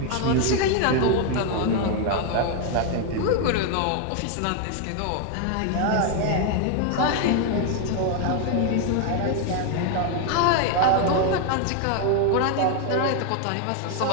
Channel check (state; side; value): different; both; correlation 0.01